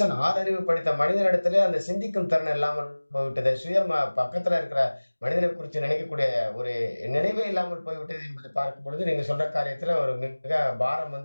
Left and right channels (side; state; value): both; inverted; correlation -1.00